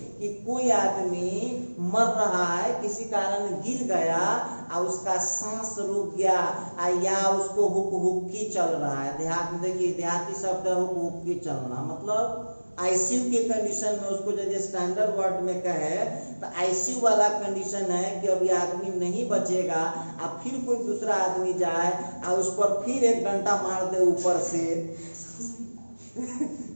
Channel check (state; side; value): inverted; both; correlation -1.00